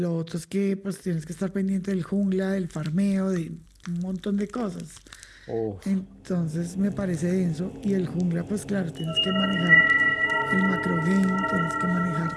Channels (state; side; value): identical; both; correlation 1.00